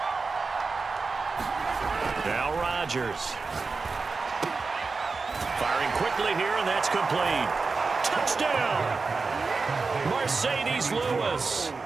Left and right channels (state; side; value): quieter; left; 4.3 dB